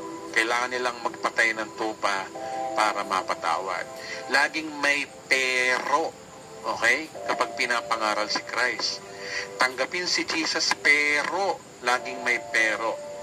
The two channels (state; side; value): identical; both; correlation 1.00